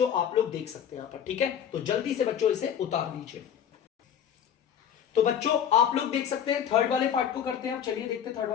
आप लोग देख सकते हैं यहां पर, ठीक है। तो जल्दी से बच्चों इसे उतार लीजिए। तो बच्चों आप लोग देख सकते हैं, थर्ड वाले पार्ट को करते हैं। चलिए देखते हैं थर्ड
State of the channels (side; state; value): right; quieter; 8.8 dB